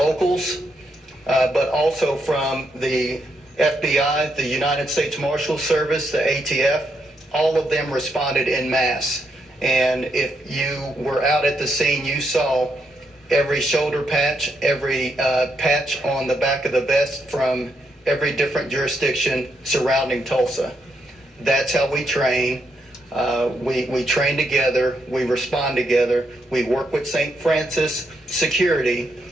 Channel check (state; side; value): normal; both; correlation 0.79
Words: but also from the FBI, the United States Marshal Service, the ATF. All of them responded en masse. And if you were out at the scene, you saw every shoulder patch, every patch on the back of the vest from every different jurisdiction surrounding Tulsa. That's how we train. We train together, we respond together, we work with St. Francis Security,